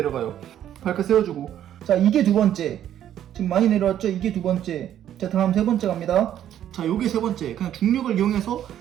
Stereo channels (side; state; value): left; quieter; 10.9 dB